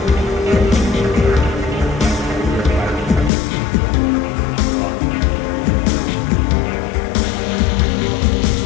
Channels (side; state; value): right; drops out; at 3.3 s